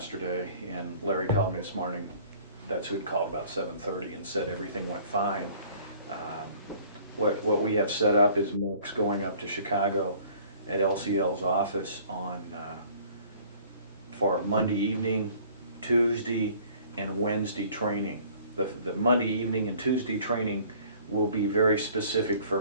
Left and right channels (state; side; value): inverted; both; correlation -0.53